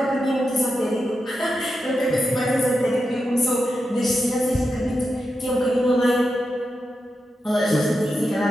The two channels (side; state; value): both; normal; correlation 0.88